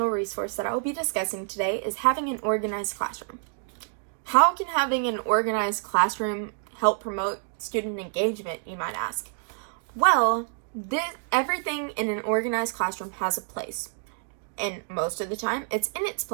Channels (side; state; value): left; silent; 60 dB below the other